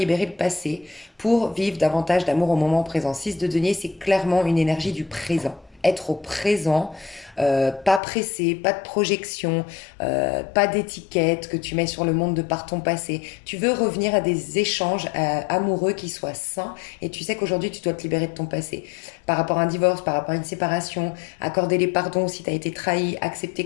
le passé pour vivre davantage d'amour au moment présent. 6 de denier, c'est clairement une énergie du présent. Être au présent, pas pressé, pas de projection, pas d'étiquette que tu mets sur le monde de par ton passé. Tu veux revenir à des échanges amoureux qui soient sains et tu sais qu'aujourd'hui tu dois te libérer de ton passé. Par rapport à un divorce, par rapport à une séparation, accorder les pardons si tu as été trahi, accepter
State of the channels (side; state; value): right; drops out; at 8.0 s